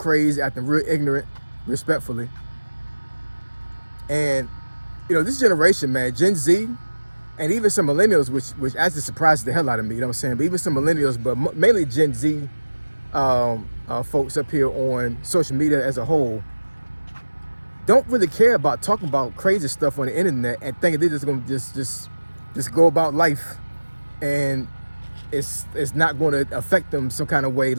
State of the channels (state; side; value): inverted; both; correlation -1.00